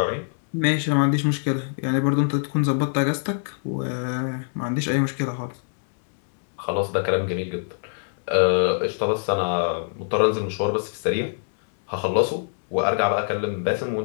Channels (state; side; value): silent; right; digital silence